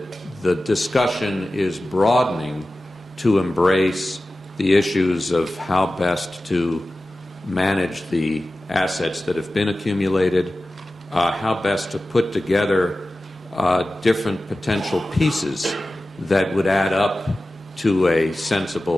discussion is broadening to embrace the issues of how best to manage the assets that have been accumulated, how best to put together different potential pieces that would add up to a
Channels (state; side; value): normal; both; correlation 0.95